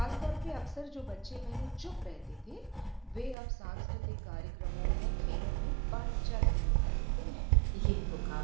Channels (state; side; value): drops out; left; at 3.4 s